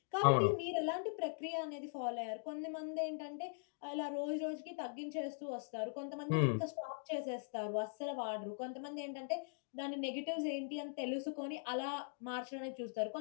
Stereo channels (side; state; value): right; silent; digital silence